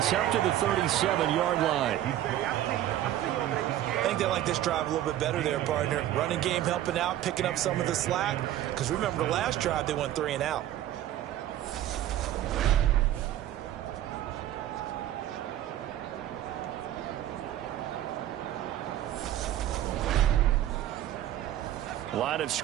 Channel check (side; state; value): left; quieter; 12.7 dB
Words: up to the 37-yard line. I think they like this drive a little bit better there, partner. Running game helping out, picking up some of the slack. Because remember the last drive, they went 3 and out. Line of